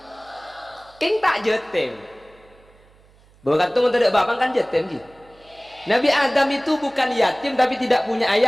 king tak jetem bukan tuh tidak bapak kan jetem gitu Nabi Adam itu bukan yatim tapi tidak punya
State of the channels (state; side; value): noise; right; hum, 29 dB below the sound